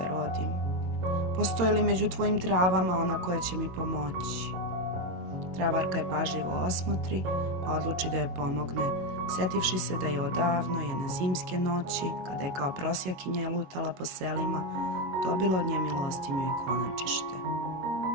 rodim. Postoji li među tvojim travama ona koja će mi pomoći? Travarka je pažljivo osmotri, pa odluči da joj pomogne, setivši se da je odavno jedne zimske noći, kada je kao prosjakinja lutala po selima, dobila od nje milostinju i konačište.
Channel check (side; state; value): left; late; 22 ms